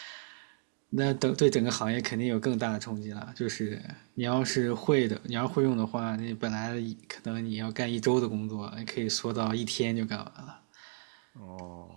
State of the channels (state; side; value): silent; left; 56 dB below the other